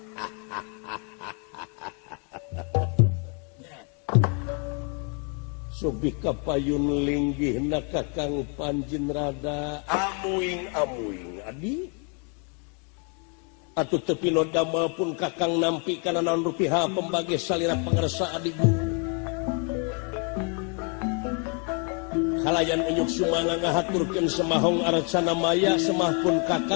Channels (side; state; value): right; quieter; 38.1 dB